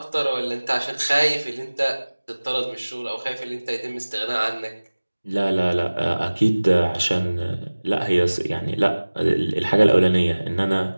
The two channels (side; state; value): both; inverted; correlation -1.00